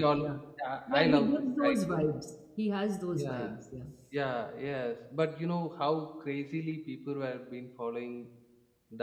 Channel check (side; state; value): both; identical; correlation 1.00